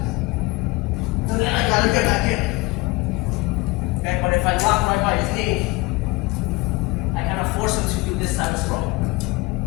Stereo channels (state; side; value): quieter; right; 22.9 dB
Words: So then I gotta get back in. Okay, but if I lock right by his knee, I kind of force him to do this type of sprawl.